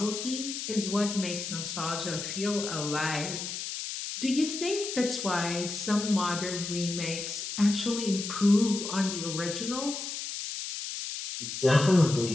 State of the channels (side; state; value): left; noise; hiss, 6 dB below the sound